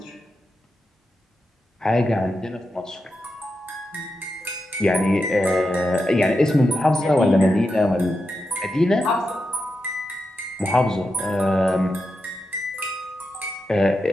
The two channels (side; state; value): both; normal; correlation 0.88